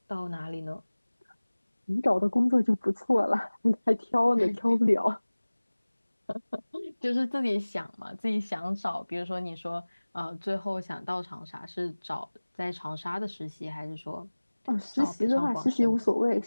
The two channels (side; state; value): both; inverted; correlation -1.00